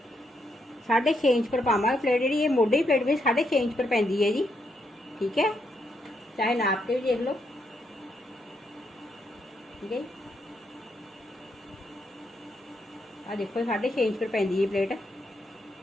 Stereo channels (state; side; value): normal; both; correlation 0.78